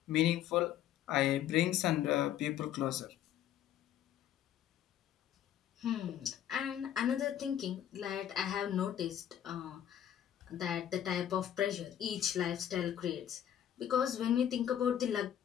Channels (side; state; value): right; quieter; 10.7 dB